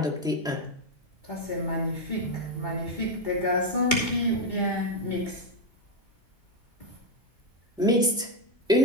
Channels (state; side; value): normal; both; correlation 0.06